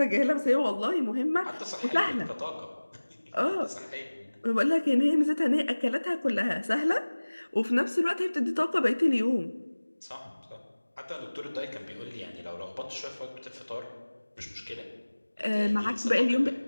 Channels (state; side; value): inverted; both; correlation -1.00